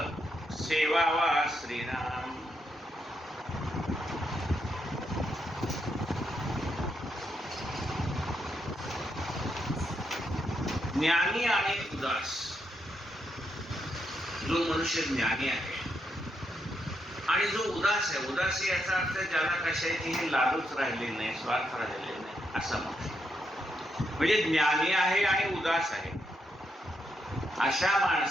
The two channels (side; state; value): both; normal; correlation 0.80